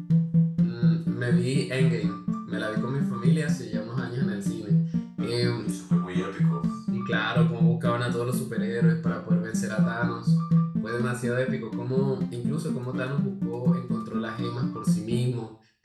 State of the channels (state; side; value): identical; both; correlation 1.00